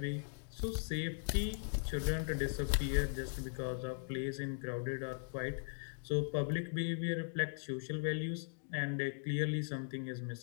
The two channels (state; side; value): silent; right; digital silence